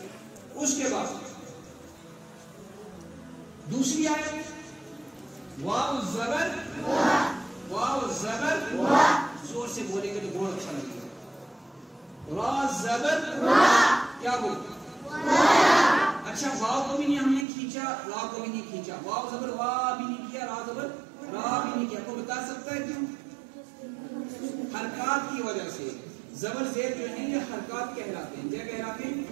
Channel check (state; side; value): drops out; left; at 17.4 s